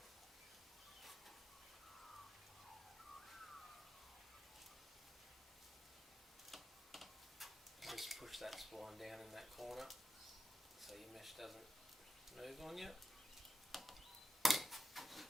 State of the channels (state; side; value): normal; both; correlation 0.89